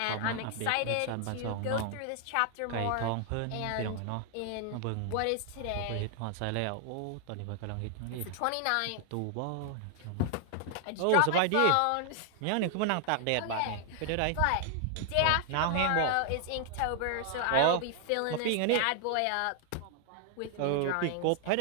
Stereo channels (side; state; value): both; different; correlation 0.00